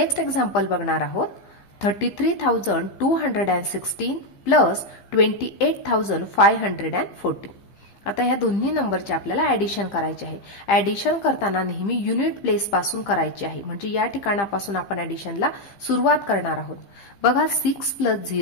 एक्झाम्पल बघणार आहोत। 33,216 प्लस 28,540। आता ह्या दोन्ही नंबरचे आपल्याला ॲडिशन करायचे आहे। ॲडिशन करताना नेहमी युनिट प्लेस पासून करायचे आहे, म्हणजे या ठिकाणापासून आपण ॲडिशनला सुरुवात करणार आहोत। बघा 6 प्लस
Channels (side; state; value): right; late; 15 ms